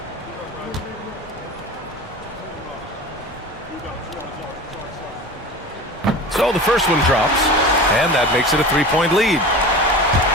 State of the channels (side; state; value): both; normal; correlation 0.34